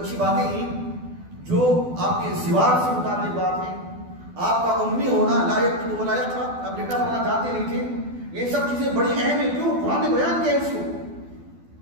باتیں ہیں، جو آپ کے زواج سے متعلق بات ہے، آپ کا امی ہونا، لا یکتب ولا یقرأ، آپ لکھنا پڑھنا جانتے نہیں تھے، یہ سب چیزیں بڑی اہم ہیں. کیوں؟ قرآن نے بیان کیا اس کو.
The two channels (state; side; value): late; left; 12 ms